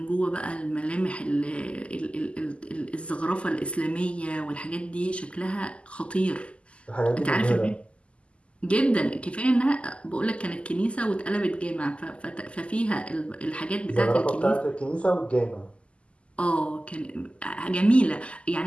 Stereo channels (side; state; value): right; late; 0.056 ms